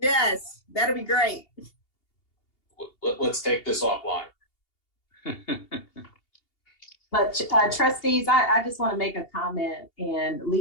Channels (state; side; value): late; right; 2.8 ms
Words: Yes, that'll be great. Let's take this offline. But trustees, I just want to make a comment, and